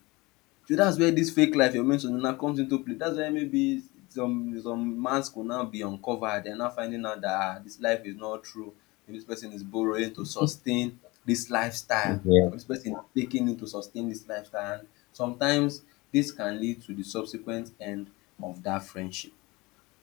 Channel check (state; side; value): quieter; right; 23.1 dB